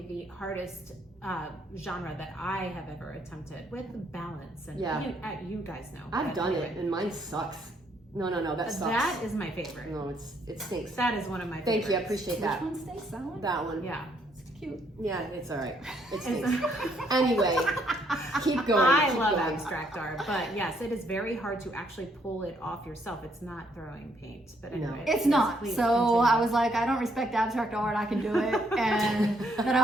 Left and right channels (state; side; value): normal; both; correlation 0.71